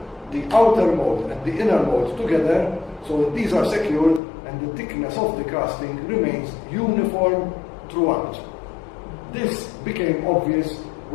the outer mold and the inner mold together, so that these are secured and the thickness of the casting remains uniform throughout. This became obvious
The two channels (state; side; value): drops out; right; at 4.2 s